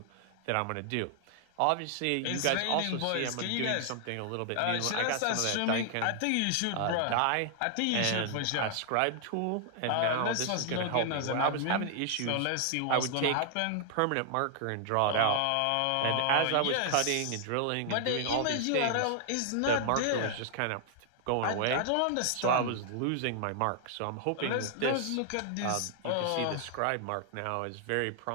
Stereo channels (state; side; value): different; both; correlation 0.00